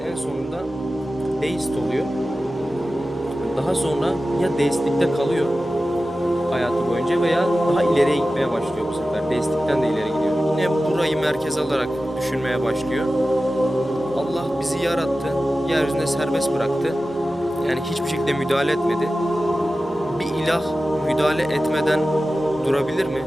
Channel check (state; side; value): normal; both; correlation 0.94